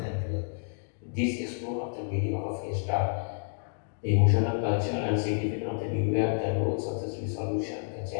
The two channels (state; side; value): silent; right; digital silence